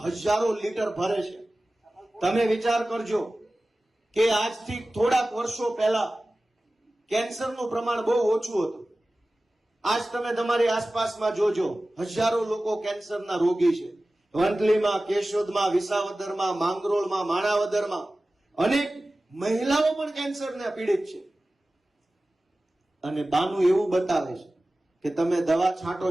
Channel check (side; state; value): both; normal; correlation 0.96